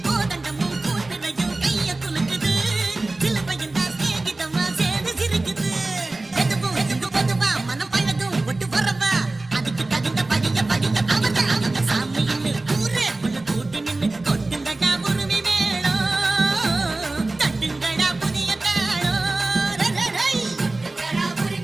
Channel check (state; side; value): quieter; left; 3.1 dB